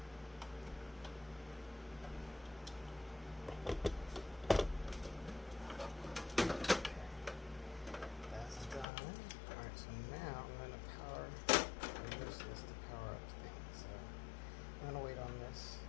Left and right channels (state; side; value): drops out; right; at 8.8 s